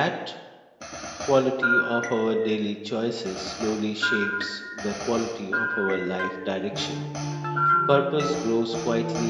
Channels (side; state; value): both; identical; correlation 1.00